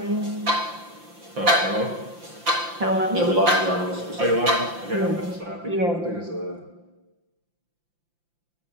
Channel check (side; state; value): left; late; 5.8 ms